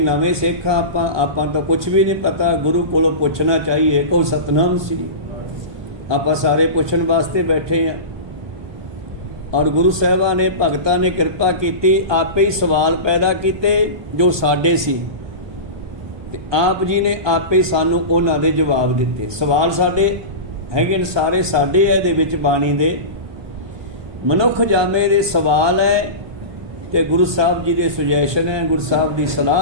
ਸਿੱਖ ਆਪਾਂ ਤਾਂ ਕੁਝ ਵੀ ਨਹੀਂ ਪਤਾ। ਗੁਰੂ ਕੋਲੋਂ ਪੁੱਛਣਾ ਚਾਹੀਏ। ਕਹੋ ਸਤਨਾਮ ਸ੍ਰੀ। ਆਪਾਂ ਸਾਰੇ ਪੁੱਛਣ ਵਾਸਤੇ ਬੈਠੇ ਹਾਂ। ਔਰ ਗੁਰੂ ਸਾਹਿਬਾਨ ਨੇ, ਭਗਤਾਂ ਨੇ ਕਿਰਪਾ ਕੀਤੀ, ਆਪੇ ਹੀ ਸਵਾਲ ਪੈਦਾ ਕੀਤੇ ਜੋ ਸਾਡੇ ਸੀ, ਤੇ ਆਪ ਜੀ ਨੇ ਆਪੇ ਹੀ ਸਾਨੂੰ ਉਹਨਾਂ ਦੇ ਜਵਾਬ ਦਿੱਤੇ। ਸਵਾਲ ਸਾਡੇ ਹੈਗੇ ਨੇ, ਸਾਰੇ ਸਾਡੇ ਹੈ ਇਹਦੇ ਵਿੱਚ ਬਾਣੀ ਦੇ। ਮਨੁੱਖ ਜਾਮੇ ਦੇ ਸਵਾਲ ਹੈ ਤੇ ਗੁਰੂ ਸਾਹਿਬ ਜੀ ਦੇ ਸੁਜੈਸ਼ਨ ਹੈ, ਗੁਰੂ ਸਾਹਿਬ ਦੀ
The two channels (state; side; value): late; left; 1.2 ms